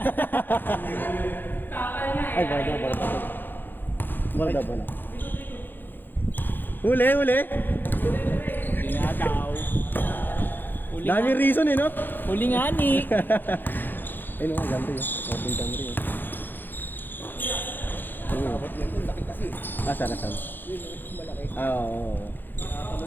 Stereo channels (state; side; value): late; right; 0.092 ms